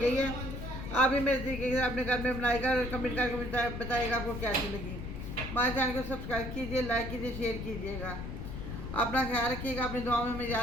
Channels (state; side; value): noise; left; rumble, 7 dB below the sound